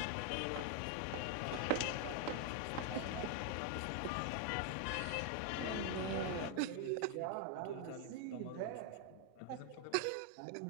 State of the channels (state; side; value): different; both; correlation 0.00